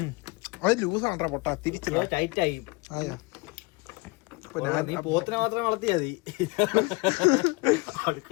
അത് ലൂസാണ്ടാ പൊട്ടാ. തിരിച്ചില്ല, ടൈറ്റ് ആയി. ആയാ നീ പോത്തിനെ മാത്രം വളർത്തിയാ മതി.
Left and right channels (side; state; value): right; quieter; 26.8 dB